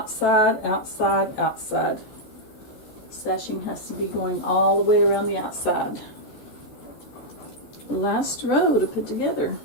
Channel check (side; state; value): right; late; 14 ms